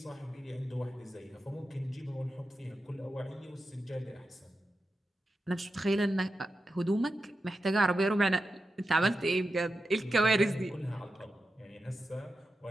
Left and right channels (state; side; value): normal; both; correlation 0.90